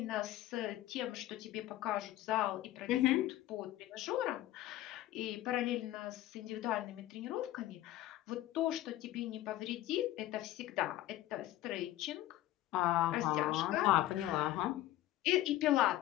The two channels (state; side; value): quieter; right; 14.8 dB